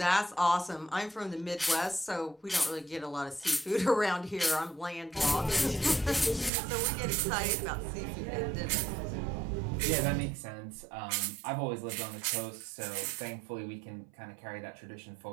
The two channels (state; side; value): drops out; left; at 6.5 s